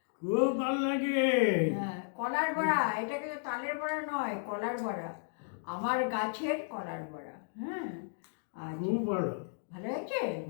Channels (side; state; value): right; silent; digital silence